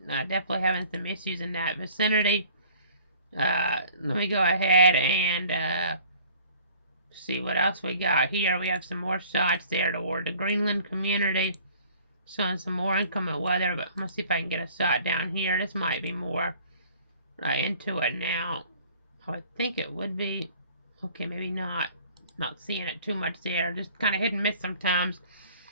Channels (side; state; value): both; inverted; correlation -0.51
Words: definitely having some issues in that vicinity. Let me go ahead and see what else we got here. We have some more shots there toward the Greenland community, showing some more inclement weather, but I'm going to see if I can get a shot down here. This might be more into it now. I would think it would be. Okay, maybe not. Not seeing it too much there. Just kind of hit and miss sometimes